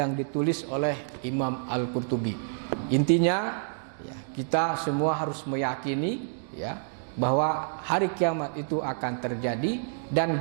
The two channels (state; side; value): silent; left; digital silence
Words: ditulis oleh Imam Al-Qurtubi. Intinya, ya, kita semua harus meyakini, ya, bahwa hari kiamat itu akan terjadi, dan